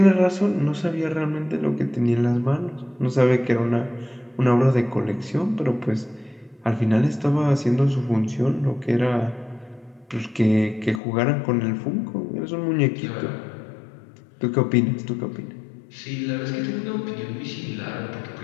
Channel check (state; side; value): drops out; right; at 11.0 s